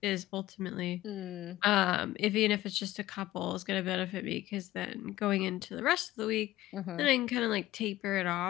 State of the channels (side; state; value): right; quieter; 16.0 dB